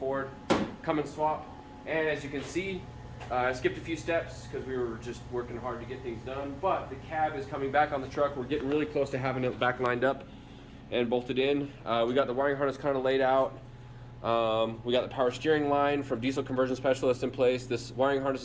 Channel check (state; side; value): identical; both; correlation 1.00